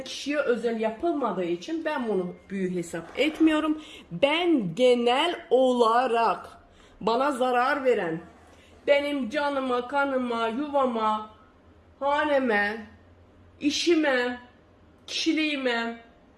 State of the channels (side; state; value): both; identical; correlation 1.00